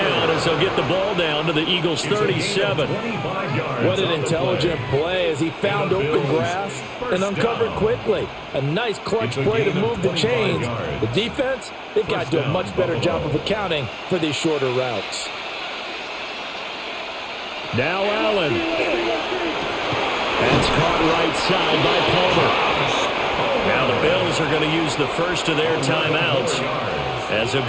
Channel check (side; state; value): both; identical; correlation 1.00